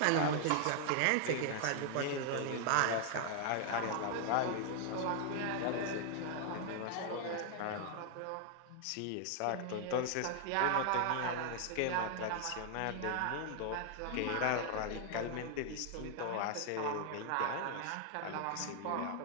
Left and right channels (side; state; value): both; different; correlation 0.00